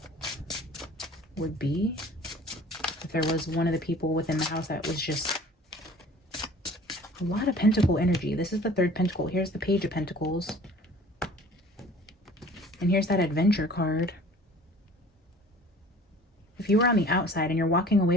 would be. If there was one of the people within the house that was just a lot of pentacle energy. This is the third pentacle. Here's the page of pentacles. And here's that adventure card. If you were on the outside and you're walking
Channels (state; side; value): normal; both; correlation 0.47